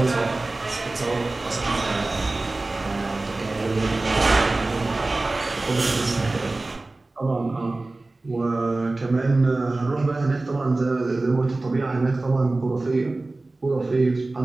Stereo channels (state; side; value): quieter; left; 3.1 dB